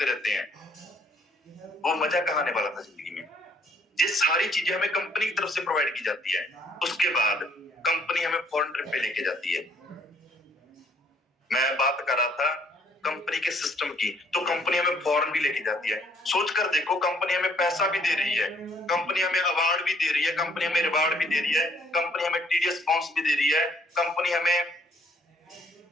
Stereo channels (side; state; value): both; normal; correlation 0.64